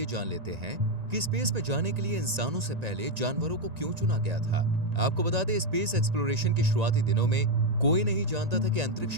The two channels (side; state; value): left; late; 1.9 ms